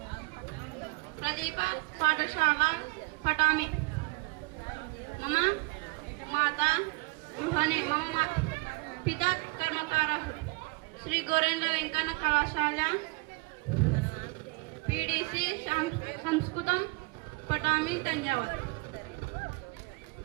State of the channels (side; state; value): left; quieter; 27.9 dB